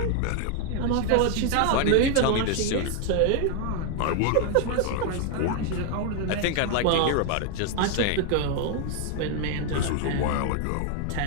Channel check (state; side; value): different; both; correlation 0.00